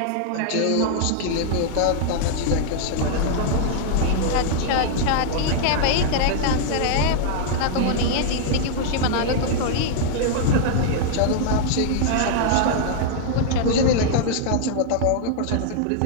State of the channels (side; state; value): both; different; correlation -0.01